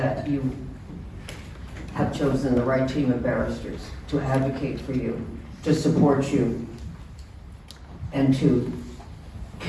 you have chosen the right team of barristers to advocate for you, to support you, and to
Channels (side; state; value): both; identical; correlation 1.00